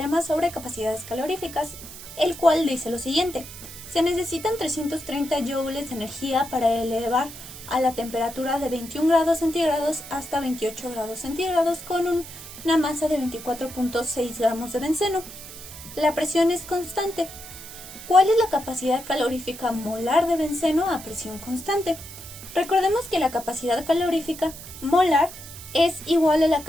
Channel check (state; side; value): noise; right; hiss, 14 dB below the sound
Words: sobre capacidades caloríficas, el cual dice lo siguiente. Se necesitan 330 joules de energía para elevar a la temperatura de 21 grados centígrados hasta 28 grados centígrados con una masa de 24.6 gramos de benceno. La presión es constante. ¿Cuál es la capacidad calorífica molar de benceno a presión constante? Recordemos que la capacidad calorífica molar es igual a la